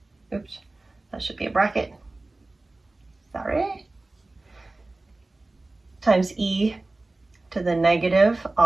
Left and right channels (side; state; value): left; quieter; 3.0 dB